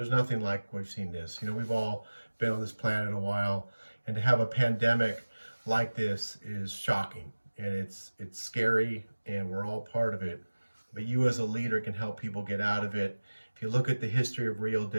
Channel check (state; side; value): inverted; both; correlation -1.00